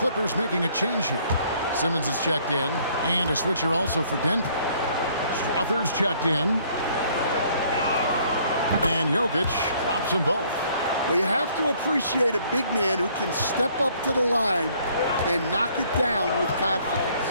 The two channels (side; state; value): both; inverted; correlation -0.62